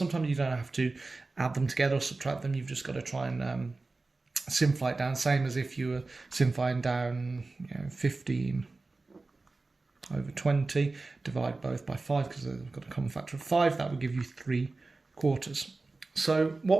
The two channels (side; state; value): left; quieter; 3.5 dB